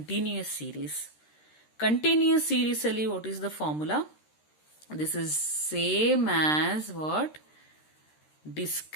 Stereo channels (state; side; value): late; right; 13 ms